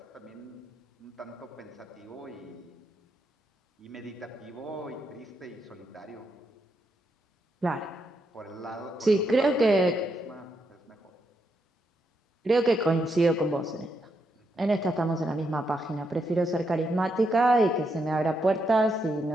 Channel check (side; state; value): both; normal; correlation 0.80